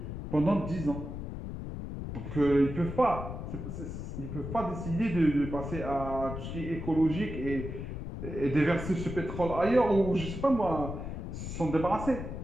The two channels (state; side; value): noise; left; rumble, 7 dB below the sound